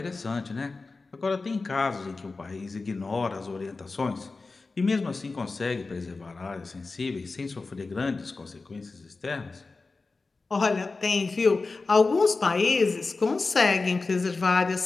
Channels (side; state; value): right; quieter; 3.8 dB